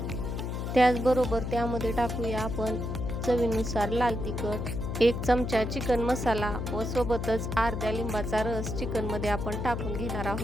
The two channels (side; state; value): left; noise; hum, 3 dB below the sound